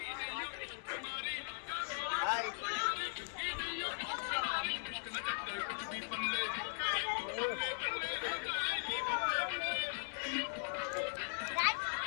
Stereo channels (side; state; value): right; silent; digital silence